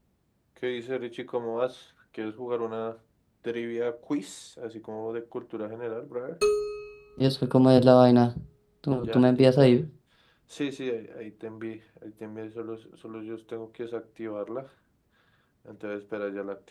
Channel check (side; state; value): both; identical; correlation 1.00